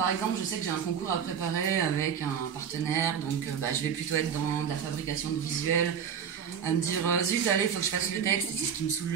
exemple, je sais que j'ai un concours à préparer avec un partenaire, donc je vais plutôt être dans de la fabrication de visuels, à me dire zut, allez, il faut que je fasse le texte, et c'est ce qui me saoule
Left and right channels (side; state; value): left; quieter; 7.8 dB